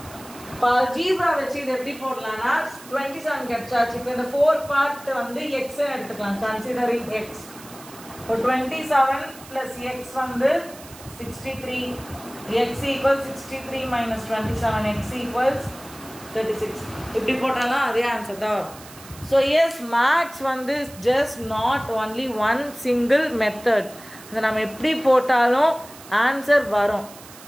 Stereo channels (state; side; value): noise; right; hiss, 19 dB below the sound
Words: algebra வச்சு இது எப்படி போடலாம்னா 27 கிடைச்சாச்சு இப்போ இந்த 4 பார்ட் வந்து x ன்னு எடுத்துக்கலாம் கன்சிடரிங் x இப்போ 27 plus x வந்து 63 x equals 63 minus 27 x equals 36 இப்படி போட்டாலும் அதே ஆன்சர் தான் வரும் so yes max வந்து just not only one single method அதை நம்ம எப்படி போட்டாலும் ஆன்சர் வரும்